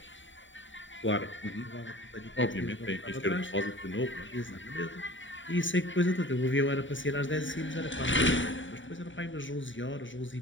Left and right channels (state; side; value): late; right; 0.55 ms